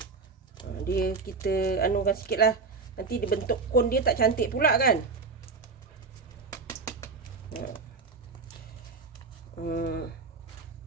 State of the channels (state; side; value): quieter; left; 4.5 dB